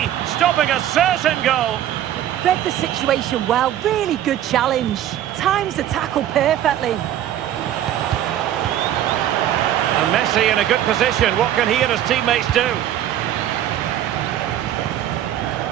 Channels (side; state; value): left; quieter; 11.7 dB